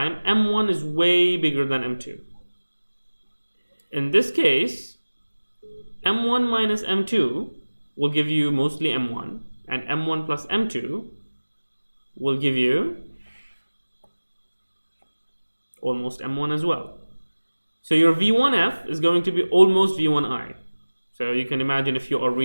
m1 is way bigger than m2. In this case, m1 minus m2 will give you mostly m1, and m1 plus m2 will give you almost m1 as well. So your v1f is going to be almost v1i. So you can imagine if you are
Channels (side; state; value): both; inverted; correlation -1.00